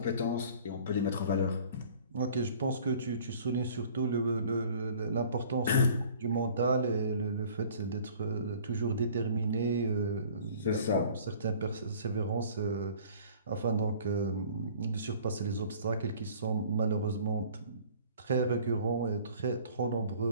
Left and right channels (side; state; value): both; inverted; correlation -0.51